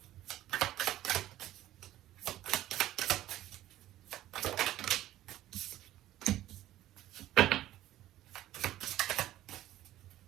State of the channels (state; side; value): quieter; left; 14.1 dB